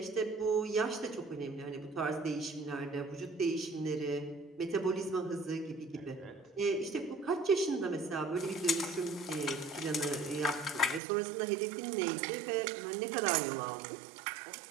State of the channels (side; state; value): left; drops out; at 11.0 s